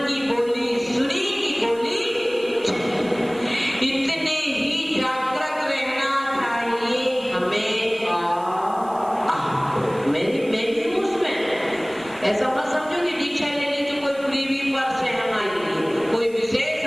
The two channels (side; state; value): right; noise; hiss, 24 dB below the sound